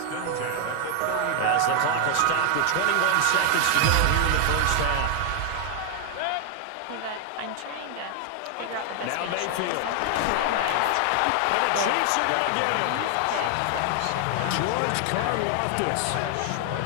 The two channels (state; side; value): different; both; correlation 0.00